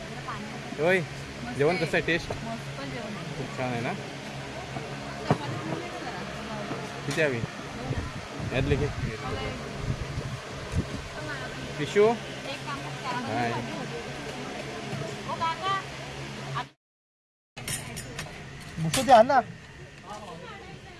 होय, जेवण कसं आहे? टेस्ट खूप छान आहे ना? किती हवी यातले की पिशू? हाय मुसो द्या ना.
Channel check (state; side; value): identical; both; correlation 1.00